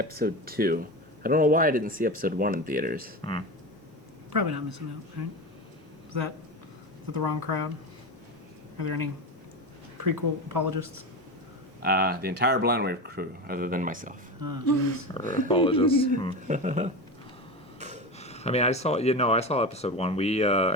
2. I don't know why I didn't see episode 1 in theaters. Probably not missing out, right? Is that the wrong crowd? Are there any prequel apologists? The entire Blind Wave crew, other than myself. Oh, jeez. Or apologists. I mean, I saw episode 1.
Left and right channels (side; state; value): both; normal; correlation 0.23